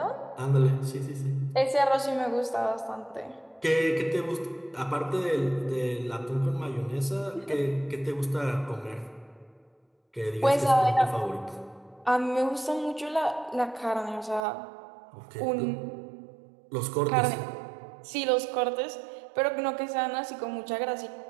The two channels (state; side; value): drops out; left; at 14.4 s